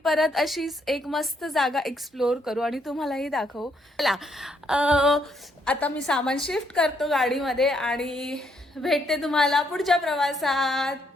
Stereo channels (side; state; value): both; normal; correlation 0.73